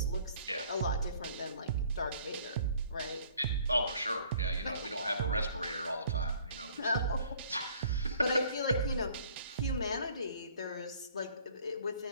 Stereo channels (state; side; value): inverted; both; correlation -0.57